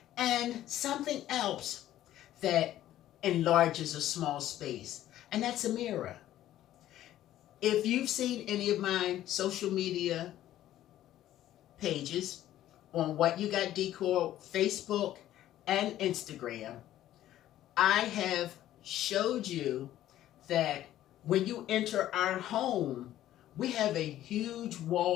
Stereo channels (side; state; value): right; quieter; 13.1 dB